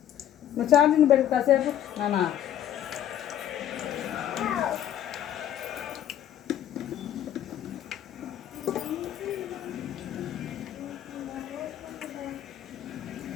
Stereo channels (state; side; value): quieter; right; 11.1 dB